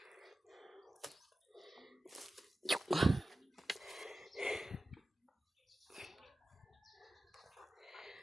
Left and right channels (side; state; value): both; normal; correlation 0.94